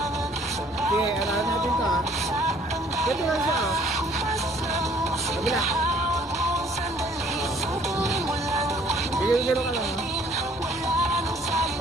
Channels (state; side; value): noise; left; rumble, 25 dB below the sound